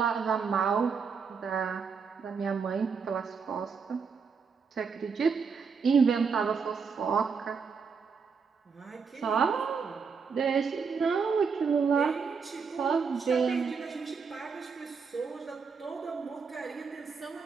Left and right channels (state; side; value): quieter; left; 5.6 dB